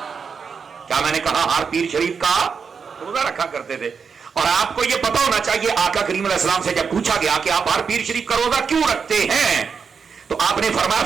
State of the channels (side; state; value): left; quieter; 5.9 dB